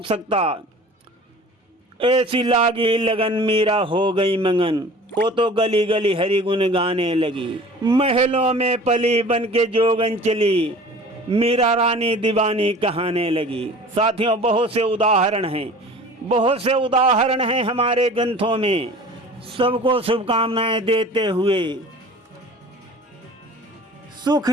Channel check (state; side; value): normal; both; correlation 0.43